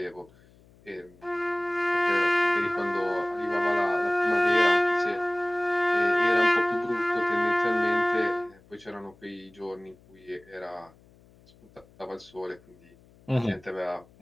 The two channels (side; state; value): left; noise; hum, 28 dB below the sound